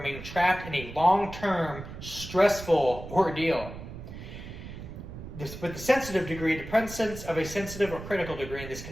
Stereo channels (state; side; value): noise; right; rumble, 11 dB below the sound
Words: trapped in a long-term, stressful ordeal. With the sensitive degree, the presence of a sensitive or critical degree in this